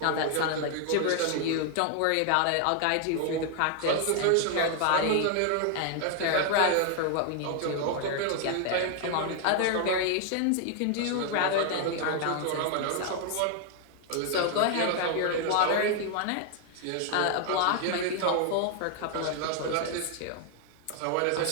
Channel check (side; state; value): both; different; correlation 0.00